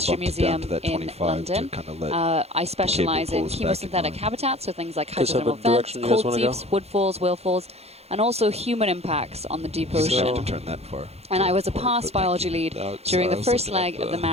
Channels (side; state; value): left; late; 0.30 ms